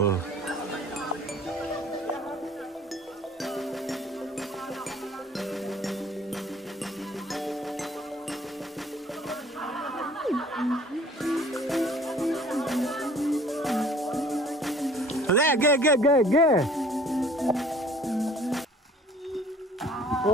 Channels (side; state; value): both; normal; correlation 0.53